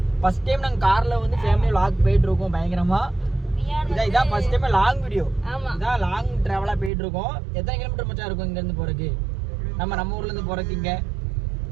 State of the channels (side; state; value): left; drops out; at 6.9 s